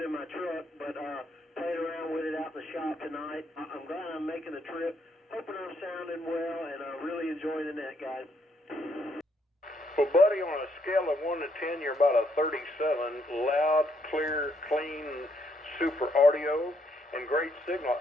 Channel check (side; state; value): both; normal; correlation 0.73